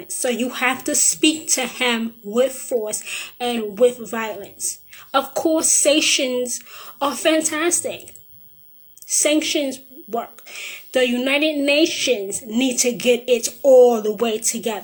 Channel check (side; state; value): both; identical; correlation 1.00